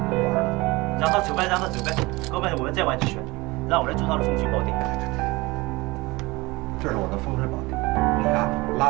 让他走呗，让他走呗，哥们，我们再玩几圈，让我来做他的风水宝地。这是我的风水宝地，你啊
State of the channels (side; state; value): left; quieter; 22.6 dB